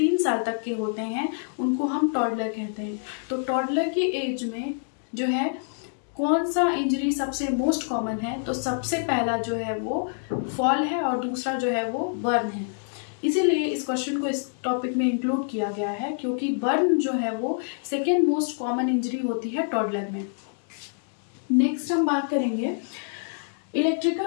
साल तक के होते हैं, उनको हम टॉडलर कहते हैं। तो टॉडलर की एज में जो है कौन सा इंजरी सबसे मोस्ट कॉमन है? तो सबसे पहला जो है वो फॉल है और दूसरा जो है वो बर्न है। इसीलिए इस क्वेश्चन को इस टॉपिक में इंक्लूड किया गया है क्योंकि बर्न जो है वो सेकेंड मोस्ट कॉमन इंजरी होती है टॉडलर में। नेक्स्ट हम बात करेंगे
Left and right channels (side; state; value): right; silent; digital silence